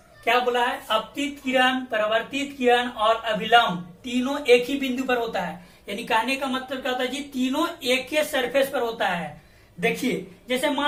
क्या बोला है, अपतित किरण, परिवर्तित किरण और अभिलंब तीनों एक ही बिंदु पर होता है। यानी कहने का मतलब क्या होता है जी, तीनों एक ही सरफेस पर होता है। देखिए जैसे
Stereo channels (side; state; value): both; identical; correlation 1.00